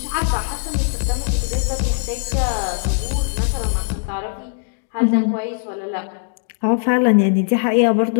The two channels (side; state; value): right; silent; digital silence